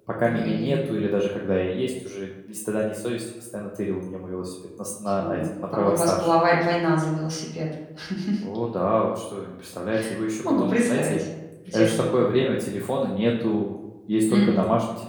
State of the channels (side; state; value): both; identical; correlation 1.00